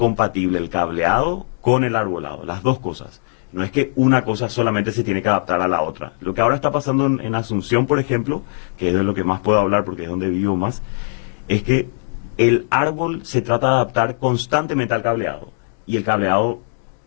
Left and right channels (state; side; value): silent; right; digital silence